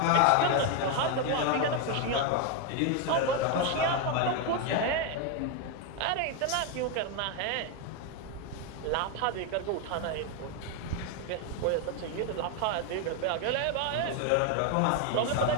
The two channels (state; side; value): different; both; correlation 0.01